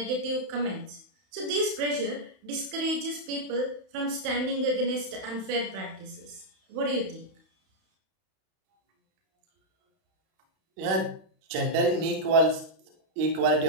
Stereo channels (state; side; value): late; left; 31 ms